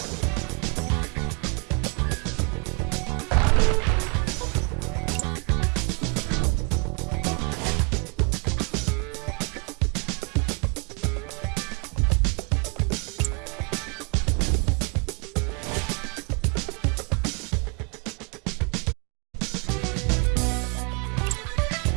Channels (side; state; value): left; quieter; 34.9 dB